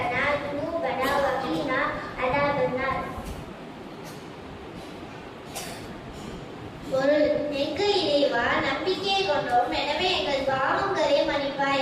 ذنوبنا وقنا عذاب النار. பொருள் எங்கள் இறைவா நம்பிக்கை கொண்டோம், எனவே எங்கள் பாவங்களை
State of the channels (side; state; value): both; identical; correlation 1.00